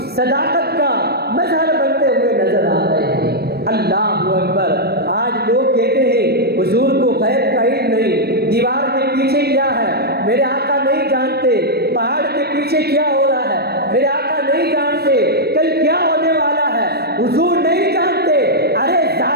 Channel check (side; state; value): left; late; 0.47 ms